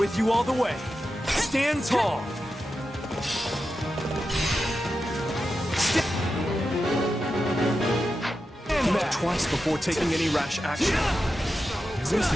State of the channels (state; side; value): normal; both; correlation 0.90